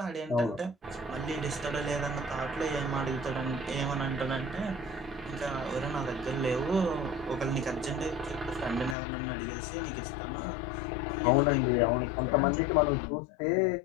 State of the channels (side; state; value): right; drops out; at 9.0 s